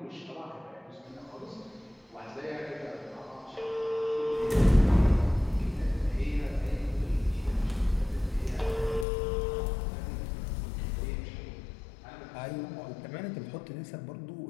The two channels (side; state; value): right; drops out; at 9.1 s